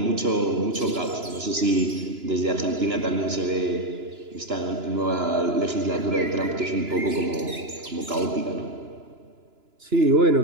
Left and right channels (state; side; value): late; left; 2.9 ms